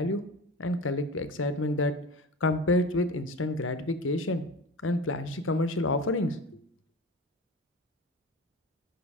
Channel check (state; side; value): normal; both; correlation 0.31